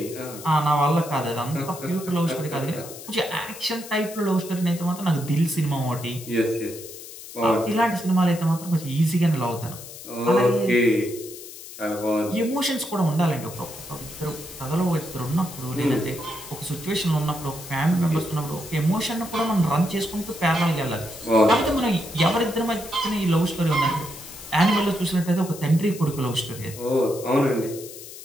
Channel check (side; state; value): left; noise; hiss, 14 dB below the sound